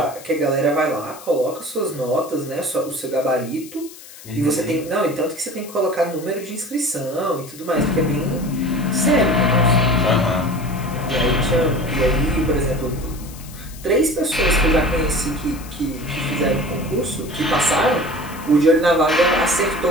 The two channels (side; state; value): left; noise; hiss, 18 dB below the sound